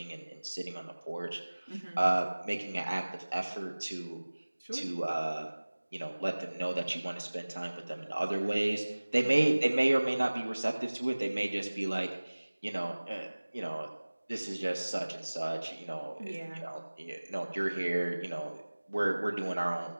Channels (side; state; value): both; inverted; correlation -1.00